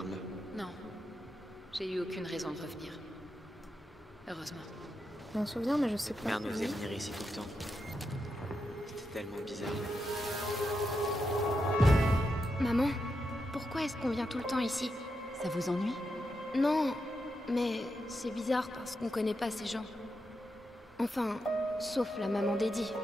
Non. J'ai eu aucune raison de revenir. Heureusement. J'ai un souvenir, mais je sais pas. Mère nous faisait venir ici tout le temps. C'était tellement bizarre. Maman, pourquoi est-ce qu'on vient tout le temps ici? Ça vous ennuie? Non, mais c'est bizarre parce qu'on connaît pas ces gens. Enfin, sauf la maman d'Eddie.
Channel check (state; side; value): normal; both; correlation 0.86